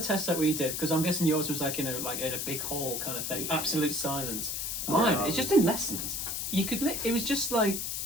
that we did, because I'm guessing yours was like in a big hall kind of thing, absolute silence. Mine, it's just in lessons. You could it was just like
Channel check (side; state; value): left; noise; hiss, 3 dB below the sound